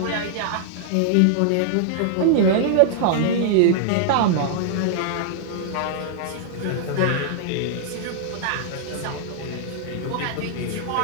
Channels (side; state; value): both; different; correlation -0.01